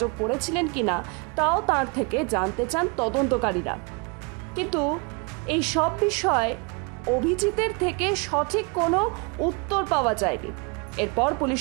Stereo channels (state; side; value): quieter; left; 31.2 dB